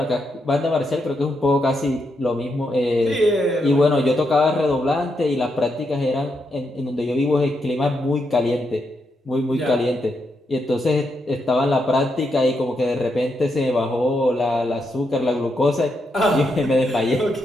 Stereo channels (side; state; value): both; normal; correlation 0.82